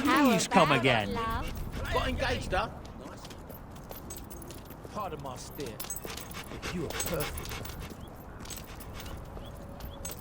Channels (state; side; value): identical; both; correlation 1.00